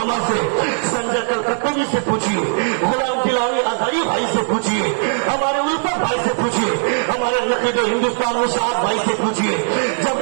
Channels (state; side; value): silent; left; 59 dB below the other